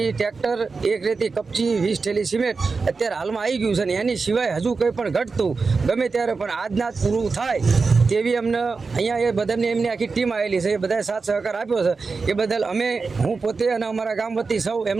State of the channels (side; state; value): left; quieter; 4.4 dB